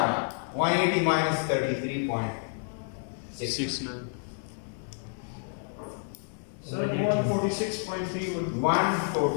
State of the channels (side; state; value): right; silent; 57 dB below the other